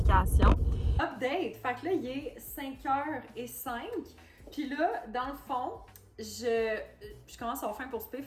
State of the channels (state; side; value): identical; both; correlation 1.00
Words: Update! Fait que là, il est 5h05. Puis là, dans le fond, je commence à avoir faim pour souper,